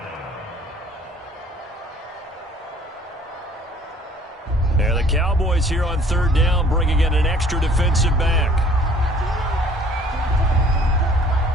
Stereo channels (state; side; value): normal; both; correlation 0.55